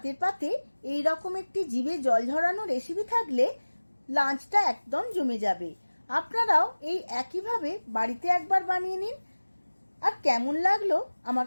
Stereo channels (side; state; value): both; inverted; correlation -1.00